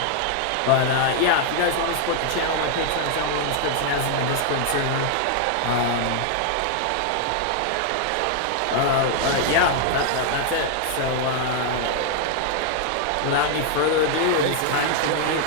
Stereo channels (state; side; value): different; both; correlation 0.00